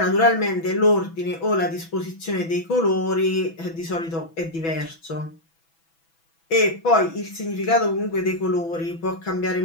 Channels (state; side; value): late; right; 6.1 ms